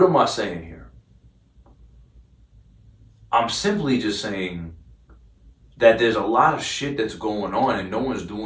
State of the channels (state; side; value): identical; both; correlation 1.00